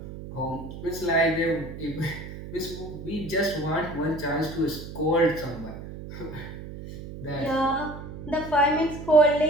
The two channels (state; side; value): noise; right; hum, 11 dB below the sound